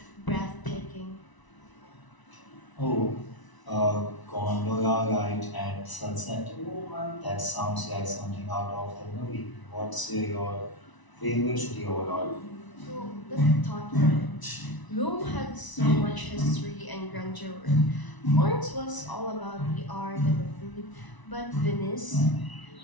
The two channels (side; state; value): right; late; 1.0 ms